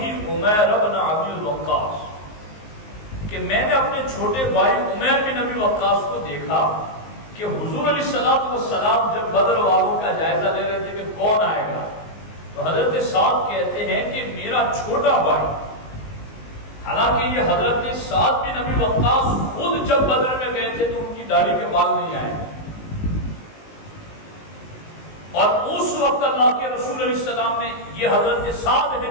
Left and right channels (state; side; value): late; right; 19 ms